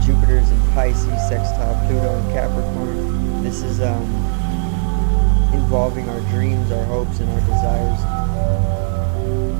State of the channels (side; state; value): left; silent; 68 dB below the other